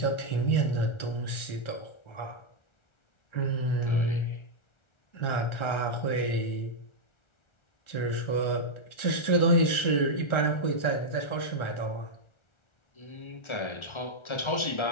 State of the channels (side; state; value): right; late; 1.4 ms